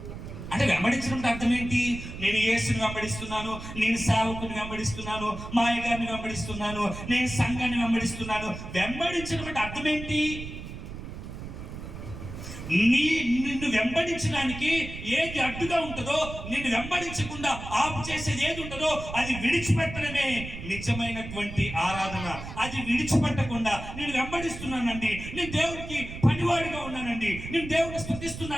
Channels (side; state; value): right; noise; rumble, 10 dB below the sound